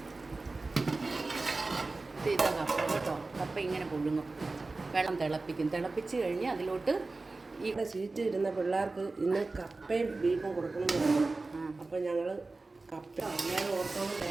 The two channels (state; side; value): quieter; left; 3.5 dB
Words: ഇതാ കപ്പ കേട്ടോ. കപ്പ ഇങ്ങനെ പുഴുങ്ങും, വെള്ളം തിളപ്പിച്ച് കഴിഞ്ഞ് അതിലോട്ട് ഇവിടെ സീറ്റ് ഇരുന്ന പിള്ളേർക്ക് ഇന്ന് കപ്പയും ബീഫും കൊടുക്കണമെന്ന്. അപ്പം ഞങ്ങൾ കപ്പ എല്ലാവരും ഓർത്തോളം